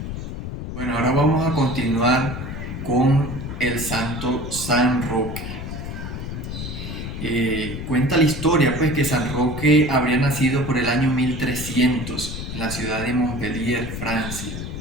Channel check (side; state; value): left; noise; rumble, 7 dB below the sound